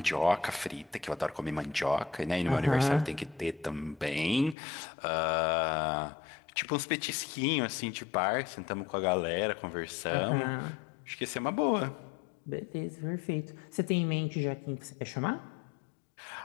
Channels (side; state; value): right; drops out; at 4.5 s